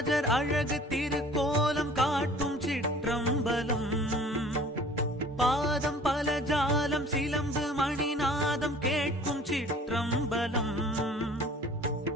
அழகு திருக்கோலம் காட்டும் சிற்றம்பலம், பாதம் பல ஜாலம் சிலம்பு மணிநாதம் கேட்கும் சிற்றம்பலம்,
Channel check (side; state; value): both; normal; correlation 0.48